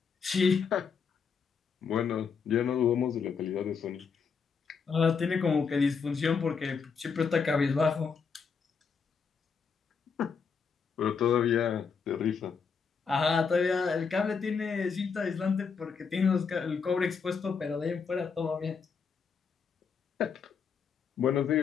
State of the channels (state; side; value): quieter; right; 5.8 dB